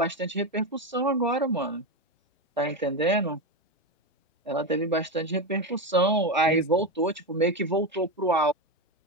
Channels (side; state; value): both; normal; correlation 0.13